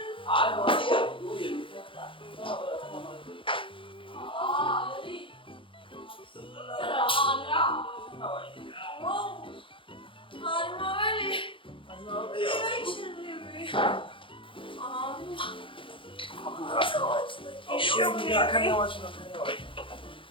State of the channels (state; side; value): late; right; 0.25 ms